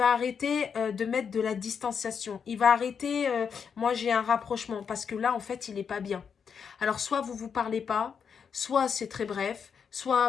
arrêter de mettre de la distanciation. Il va arrêter, moi j'ai un rapprochement, parce que là, en fait, il n'est pas bien. Alors, soit vous ne vous parlez pas, soit c'est très bref, soit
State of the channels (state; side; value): quieter; right; 6.7 dB